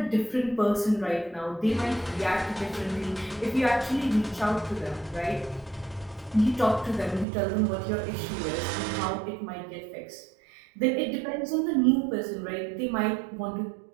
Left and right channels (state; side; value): drops out; left; at 7.2 s